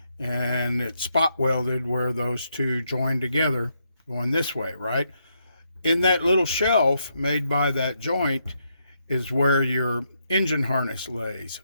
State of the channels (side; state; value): both; inverted; correlation -0.79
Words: and it's spot welded where those two join together going this way, right? In that little shelf made by that joint is where your engine harness lays.